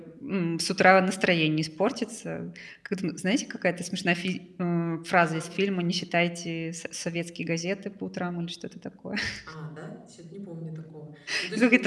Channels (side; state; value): both; identical; correlation 1.00